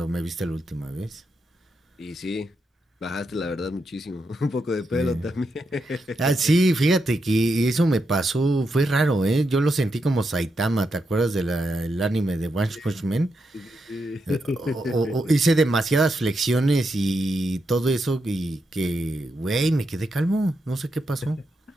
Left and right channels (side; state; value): both; normal; correlation 0.84